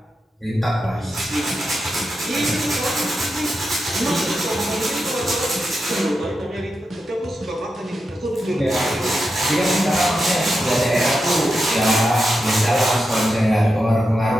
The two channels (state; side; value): normal; both; correlation 0.88